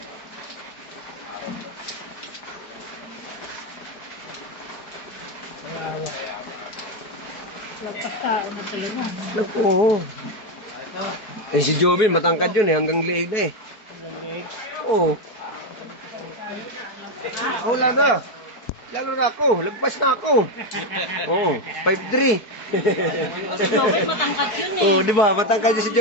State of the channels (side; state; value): right; late; 4.7 ms